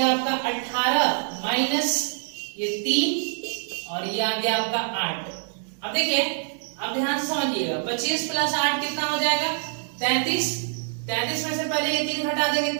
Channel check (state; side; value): silent; left; 62 dB below the other